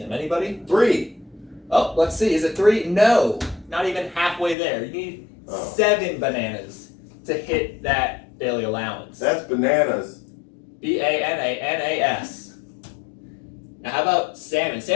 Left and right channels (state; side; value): drops out; right; at 4.5 s